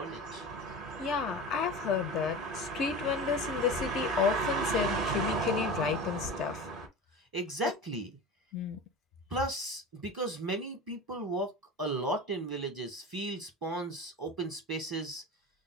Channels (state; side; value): normal; both; correlation 0.31